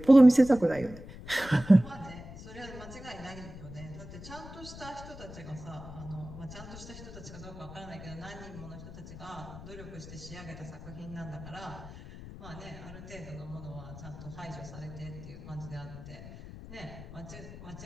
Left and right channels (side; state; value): left; noise; rumble, 13 dB below the sound